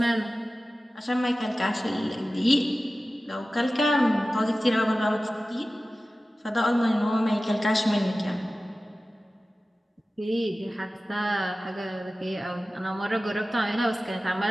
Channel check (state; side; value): normal; both; correlation 0.96